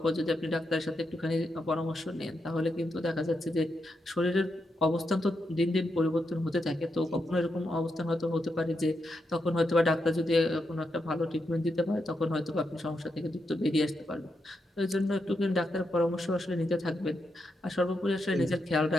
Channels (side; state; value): both; normal; correlation 0.84